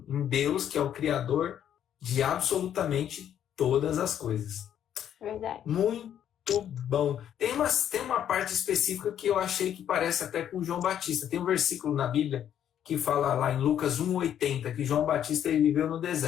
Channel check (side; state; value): right; quieter; 10.0 dB